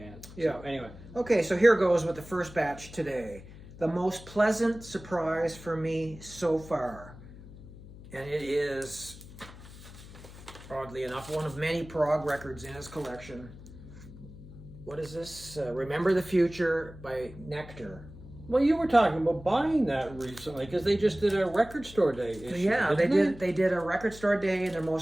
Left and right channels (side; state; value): left; noise; hum, 17 dB below the sound